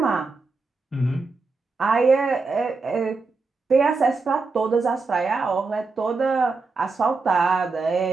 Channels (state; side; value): quieter; left; 4.0 dB